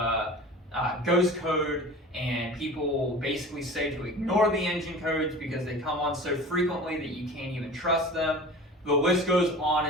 ghost code, and people basically say to ignore the engine codes because they come on so frequently that you can't even trust them. The list goes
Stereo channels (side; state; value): both; normal; correlation 0.38